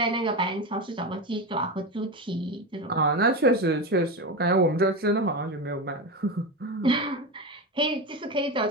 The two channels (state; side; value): normal; both; correlation 0.19